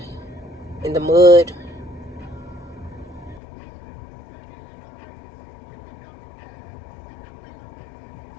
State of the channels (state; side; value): drops out; right; at 3.4 s